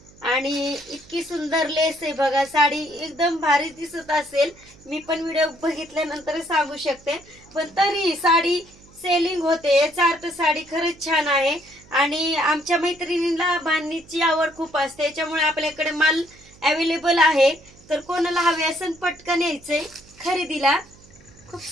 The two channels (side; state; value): right; noise; hum, 25 dB below the sound